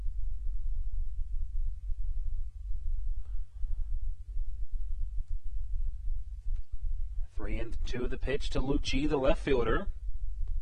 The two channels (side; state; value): both; identical; correlation 1.00